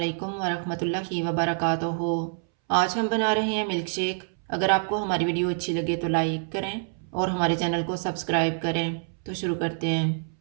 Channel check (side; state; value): left; silent; 61 dB below the other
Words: वरहमतुल्लाहि वबरकातुहू। आज हम बना रहे हैं मिल्क शेक। अगर आपको हमारी वीडियो अच्छी लगे तो लाइक करें और हमारे चैनल को सब्सक्राइब करें। तो शुरू करते हैं।